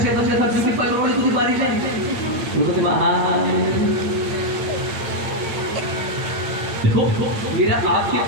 बच गया था ब्यूटी पार्लर वाली तुझे बारी जाए वो कहते देखो मेरा आपके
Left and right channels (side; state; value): left; late; 8.9 ms